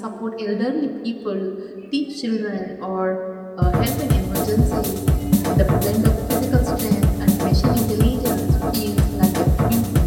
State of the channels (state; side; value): identical; both; correlation 1.00